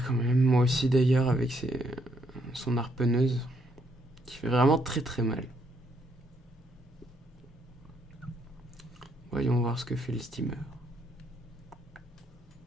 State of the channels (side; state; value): both; normal; correlation 0.73